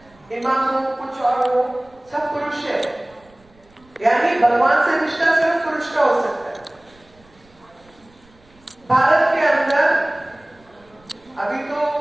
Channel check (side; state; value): right; noise; rumble, 30 dB below the sound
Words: इमाम हो, कुछ और हो, सब पुरुष है, यानी भगवान से रिश्ता सिर्फ पुरुष का हो सकता है। भारत के अंदर अभी तो